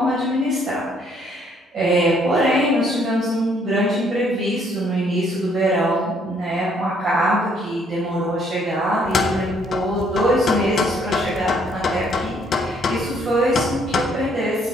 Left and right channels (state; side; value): normal; both; correlation 0.66